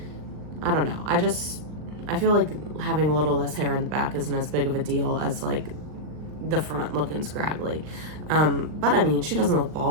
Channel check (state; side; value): late; left; 39 ms